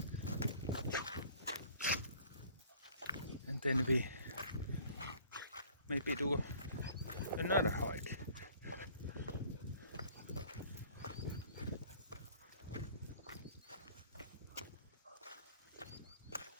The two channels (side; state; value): both; inverted; correlation -0.53